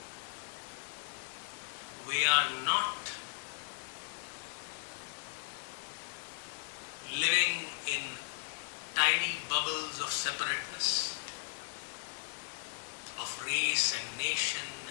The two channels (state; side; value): silent; right; 53 dB below the other